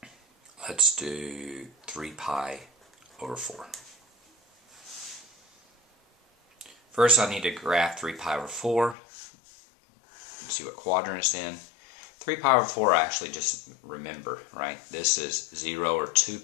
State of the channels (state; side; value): drops out; right; at 9.0 s